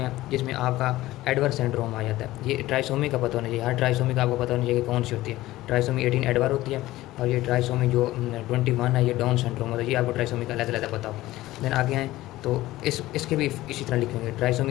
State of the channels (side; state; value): right; quieter; 16.8 dB